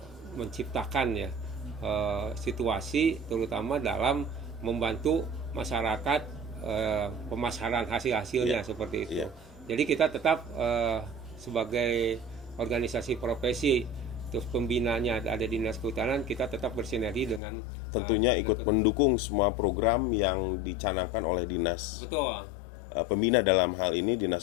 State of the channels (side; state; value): right; drops out; at 17.4 s